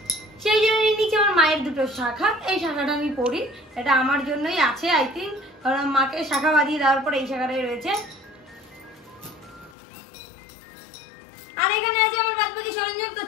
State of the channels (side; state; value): right; drops out; at 9.8 s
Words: সেই জন্য নিচে আমার মায়ের দুটো শাখা, এই শাখাটা আমি পরি, এটা আমার জন্যই আছে আই থিঙ্ক, কারণ মাকে শাখা বাঁধিয়ে দেওয়ার পর এই শাখাটাই রয়েছে। আর এখানে আছে আমার বাদ বাকি সরঞ্জাম। তো